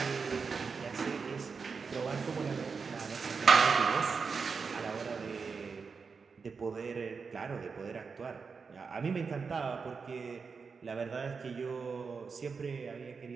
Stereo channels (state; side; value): quieter; left; 5.2 dB